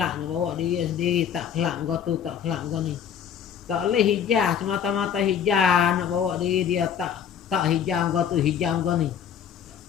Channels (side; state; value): right; quieter; 8.3 dB